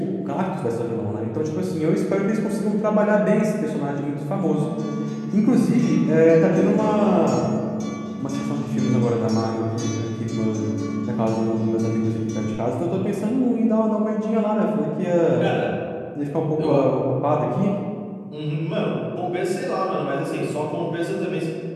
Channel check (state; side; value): identical; both; correlation 1.00